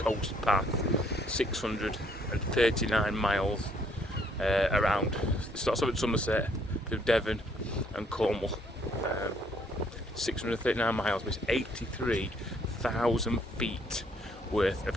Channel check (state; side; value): normal; both; correlation 0.66